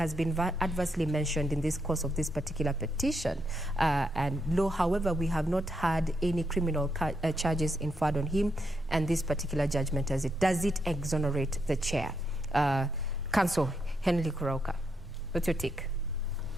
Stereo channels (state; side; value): normal; both; correlation 0.80